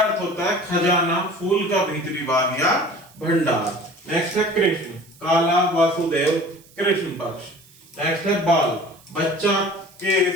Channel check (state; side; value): noise; right; hiss, 26 dB below the sound